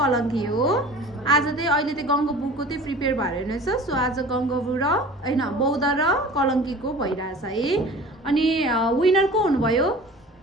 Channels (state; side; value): normal; both; correlation 0.42